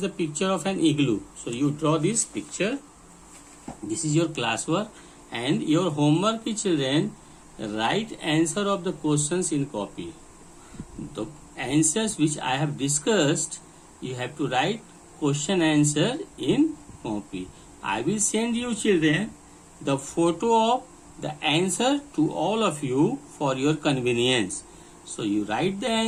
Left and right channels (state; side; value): identical; both; correlation 1.00